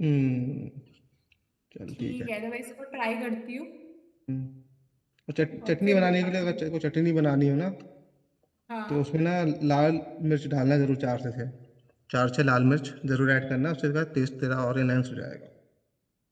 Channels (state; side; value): identical; both; correlation 1.00